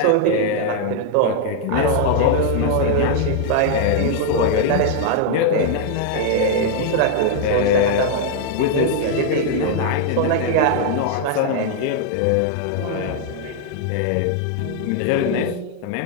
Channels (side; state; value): both; different; correlation 0.00